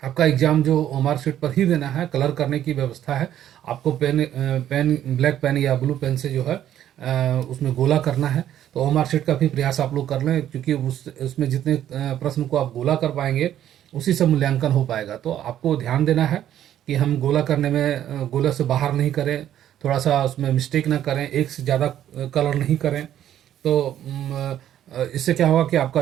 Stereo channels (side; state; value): left; quieter; 11.2 dB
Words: आपका एग्ज़ाम जो OMR शीट पर ही देना है। कलर करने की व्यवस्था है। आपको पेन ब्लैक पेन या ब्लू पेन से जो है उसमें गोला करना है। तो OMR शीट का भी प्रयास आप लोग कर लें, क्योंकि उसमें जितने प्रश्न को आप गोला कर पाएंगे, उसी से मूल्यांकन हो पाएगा। तो आपको ध्यान देना है कि हम गोला करने में गोला से बाहर नहीं करें, थोड़ा सा उसमें मिस्टेक ना करें, एक से ज़्यादा कलर नहीं करें। तो इससे क्या होगा कि आपका